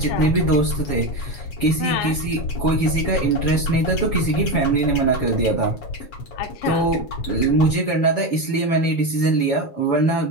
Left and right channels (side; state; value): right; late; 7.1 ms